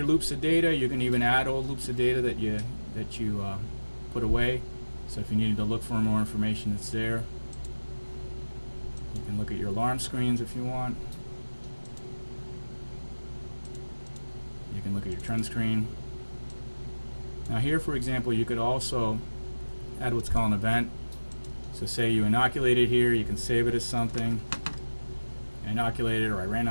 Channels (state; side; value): inverted; both; correlation -1.00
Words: loops of data. You can even add old loops of data that you put away. So if you needed to look for more information, it's there. You can look at your alarm screens if you want. You can look at your trend screen. Now here, for example, you could also add what's called an event. So say you inoculated here, you can save it as something. Inoculated, or I ran